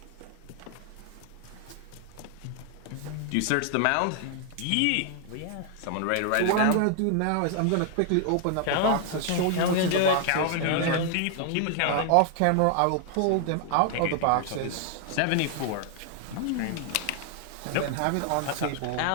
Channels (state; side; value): different; both; correlation 0.00